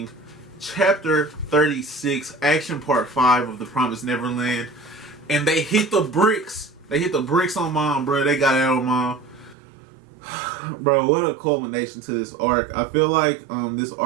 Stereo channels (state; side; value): drops out; left; at 9.6 s